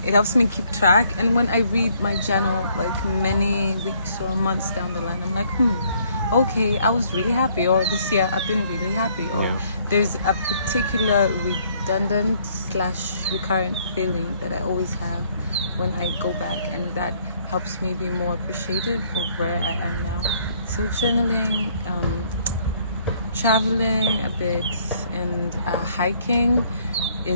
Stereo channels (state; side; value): inverted; both; correlation -0.65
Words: it helps me keep track. And when I read my journal, like many weeks or months down the line, I'm like, okay, I was really happy. Or this year, I've been really happy. Or there's a particular redundant / recurrent feeling that I always have when I go back. And that helps me be more appreciative of where I am now. So journaling, traveling a bit, and hiking